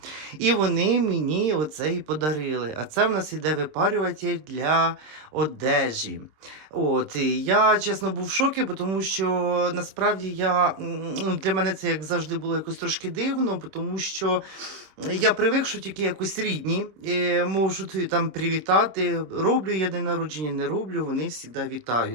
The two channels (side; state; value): left; late; 26 ms